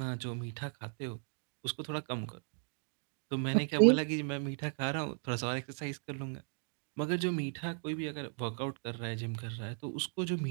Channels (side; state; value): left; silent; 54 dB below the other